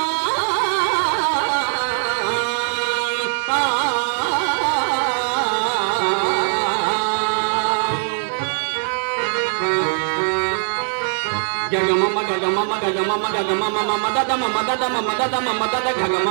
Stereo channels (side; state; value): left; silent; digital silence